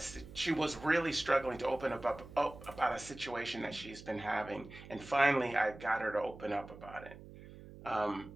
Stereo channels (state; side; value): noise; right; hum, 16 dB below the sound